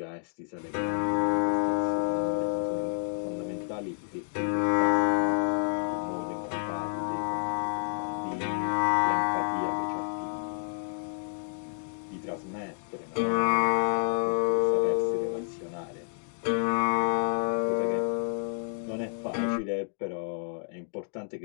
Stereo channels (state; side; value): silent; right; digital silence